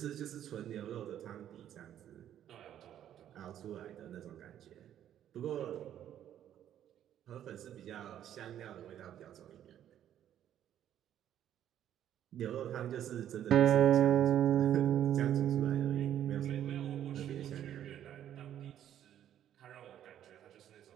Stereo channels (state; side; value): quieter; left; 10.8 dB